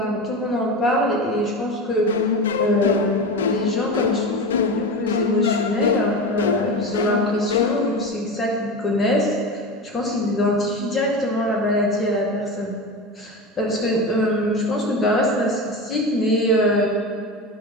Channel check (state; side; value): normal; both; correlation 0.25